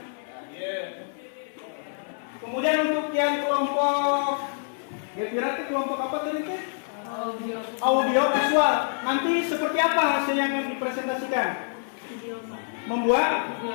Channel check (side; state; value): right; silent; digital silence